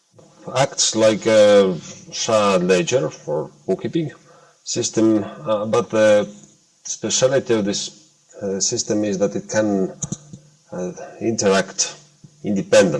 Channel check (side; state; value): both; identical; correlation 1.00